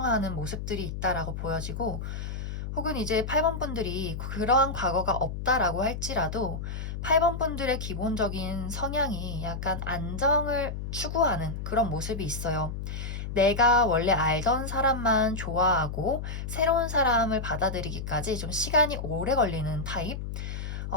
모습들이 있다라고 보여지고 혹은 이제 8번 분들이 그러한 과거가 없다라고 할지라도 8번 분들의 기본적인 성향이 약간 안정을 추구하는 그런 모습이 있어요. 내가 원래 알던 사람만 좋아하고 새로운 사람을 받아들이기까지 좀 시간이 오래 걸리는 타입?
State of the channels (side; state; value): left; noise; hum, 6 dB below the sound